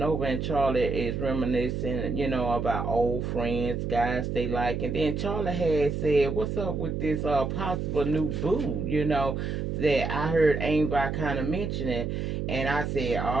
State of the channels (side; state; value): right; noise; hum, 2 dB below the sound